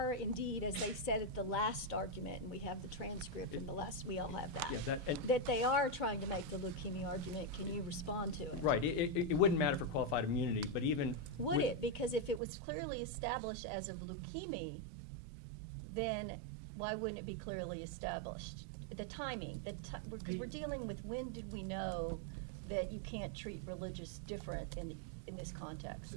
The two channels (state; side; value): drops out; left; at 12.4 s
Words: indeed, as they said at the last argument, and we have the transcript from the last, we all have that, Yeah, that they are trying to make the leukemia argument, can you respond to it? Right. It wouldn't matter for qualified immunity, but even Would with- it? Because if it was clearly established as of leukemia, then why wouldn't it be clearly established? The timing, we're dealing with when did we know that you can't treat religious different in this